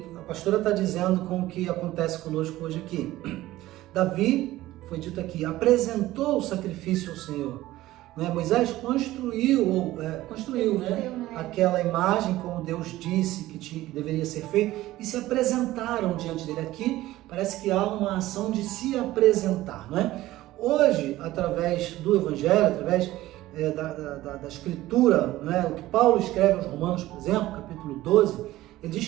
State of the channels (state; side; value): quieter; left; 16.2 dB